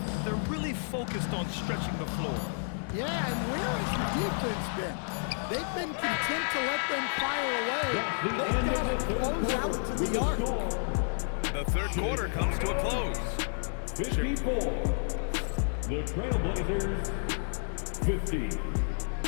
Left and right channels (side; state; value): right; silent; digital silence